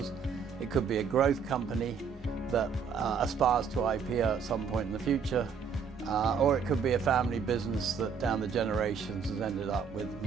It could be a growth company that aspires to IPO at some point in the future, or it could be a family business that down the generations has ended up with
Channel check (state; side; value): quieter; left; 6.2 dB